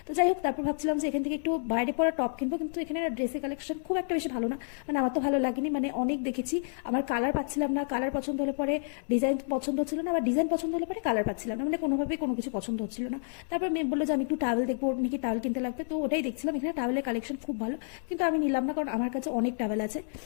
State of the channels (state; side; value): silent; right; 57 dB below the other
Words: তো যাই হোক, তারপর ভাবছিলাম যে এখান থেকে একটু বাইরে পরা টপ কিনবো, কিন্তু এখানে ড্রেসের কালেকশন খুব একটা বেশি ভালো না, মানে আমার তো ভালো লাগেনি। মানে অনেক দেখেছি, আমার কালার পাচ্ছিলাম না, কালার পছন্দ হলে পরে ডিজাইন পছন্দ হচ্ছিল না, আবার ডিজাইন পছন্দ হলে পরে কালার পাচ্ছিলাম না, মানে কোনোভাবেই কোনো কিছু পছন্দ হচ্ছিল না। তারপর মেয়ে বললো যে আমি একটু টাওয়েল দেখবো, ওর নাকি টাওয়েল কিনতে লাগবে, তো ওটাই দেখছিলাম। এখানে টাওয়েলের কালেকশন খুব ভালো, কিন্তু আমি নিলাম না, কারণ আমার কাছে অনেক টাওয়েল আছে।